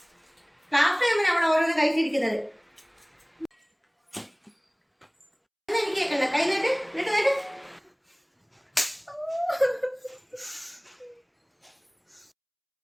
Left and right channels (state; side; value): identical; both; correlation 1.00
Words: ക്ലാസ് ടൈമിന് അവിടെ ഓരോന്ന് കഴിച്ചിരിക്കുന്നത്. എനിക്ക് കേൾക്കണ്ട. കൈ നീട്ട്, നീട്ട്, നീട്ട്.